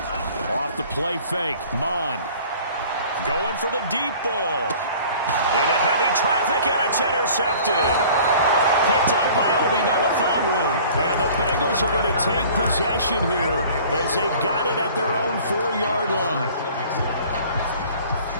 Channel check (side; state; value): both; inverted; correlation -0.48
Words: Off the play fake, Mon. Going for the deep ball. Into heavy traffic, and it's intercepted. Picked up by Obi Melifonwu. And the Bengals are going to take possession here as they got it at their own 4-yard line.